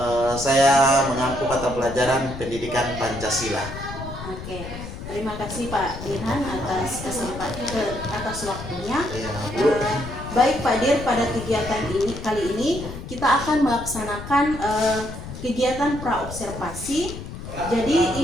Saya mengampu mata pelajaran pendidikan Pancasila. Oke, terima kasih Pak Dirhan atas atas waktunya. Iya, Bu. Baik Pak Dir, pada kegiatan kali ini kita akan melaksanakan kegiatan pra-observasi. Jadi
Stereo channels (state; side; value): noise; left; rumble, 10 dB below the sound